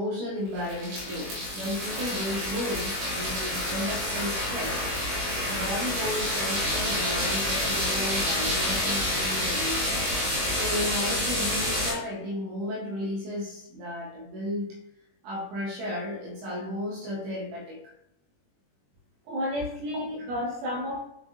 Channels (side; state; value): left; late; 21 ms